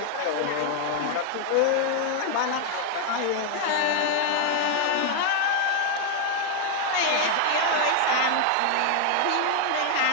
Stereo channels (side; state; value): both; different; correlation 0.00